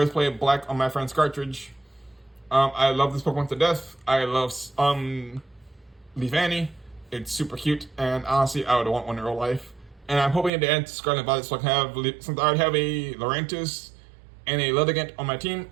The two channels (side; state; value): left; drops out; at 10.5 s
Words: played black on my friend's cartridge. I love this Pokemon to death. I love Leafani. It's super cute, and honestly I would want one in real life. And I'm hoping to add Scarlet Violet, so I can have, since I already have a Lurantis and a Lilligant on my team,